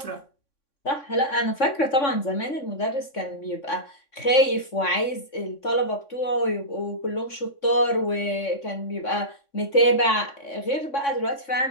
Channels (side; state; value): right; late; 3.6 ms